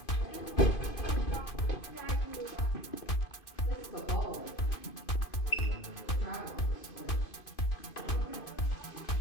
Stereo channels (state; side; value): late; right; 2.5 ms